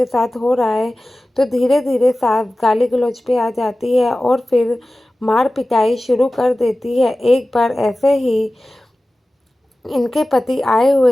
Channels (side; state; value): both; normal; correlation 0.96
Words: साथ हो रहा है, तो धीरे धीरे सास गाली गलौज पे आ जाती है और फिर मार पिटाई शुरू कर देती है। एक बार ऐसे ही इनके पति आए